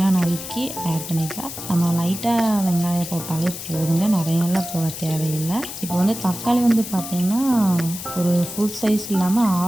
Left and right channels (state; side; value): noise; left; hiss, 9 dB below the sound